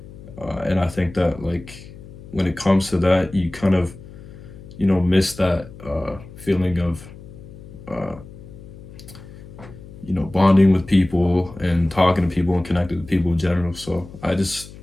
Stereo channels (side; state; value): left; noise; hum, 17 dB below the sound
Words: and I think that like when it comes to that, you kind of miss that feeling of uh, bonding with people and talking to people and connecting with people in general. So I just